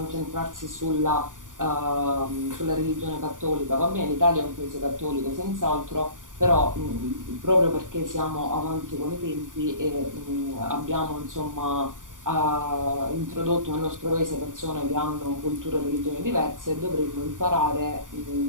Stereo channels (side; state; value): left; late; 0.88 ms